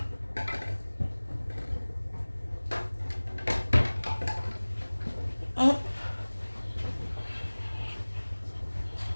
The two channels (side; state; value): both; inverted; correlation -1.00